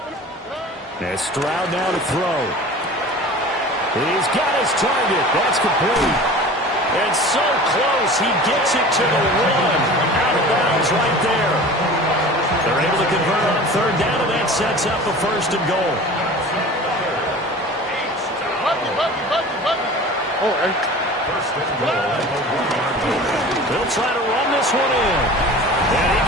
And Stroud now to throw. He's got his target. That's complete. And so close, he gets it to the 1. Out of bounds right there. They're able to convert on 3rd down, and that sets up a 1st and goal. They'll try to run this one in. And he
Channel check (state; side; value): normal; both; correlation 0.39